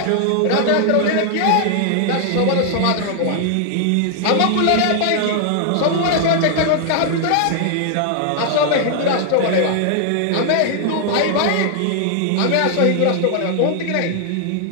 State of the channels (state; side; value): different; both; correlation 0.00